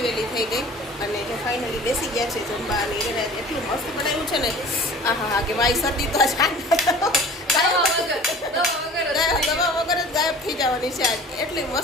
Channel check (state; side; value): normal; both; correlation 0.44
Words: વહેલી થઈ ગઈ અને જે ફાઇનલી બેસી ગયા છે જમવા અને એને એટલું મસ્ત બનાવ્યું છે ને આહા હા કે ભાઈ શરદી તો દવા વગર જ ગાયબ થઈ જવાની છે આજ એટલી